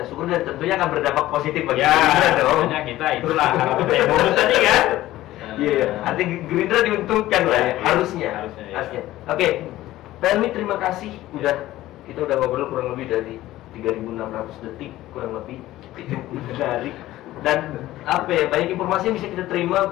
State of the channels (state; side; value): quieter; right; 15.5 dB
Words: syukur dan tentunya akan berdampak positif bagi Gerindra dong. Kita itulah bonus tadi kan. Iya, artinya Gerindra diuntungkan lah ya, harusnya. Oke, Pelmi terima kasih kita udah ngobrol kurang lebih dari 3.600 detik kurang lebih, itu menarik dan banyak informasi yang bisa kita